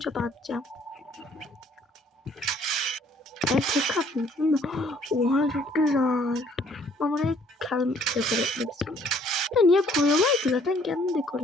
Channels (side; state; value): both; normal; correlation 0.61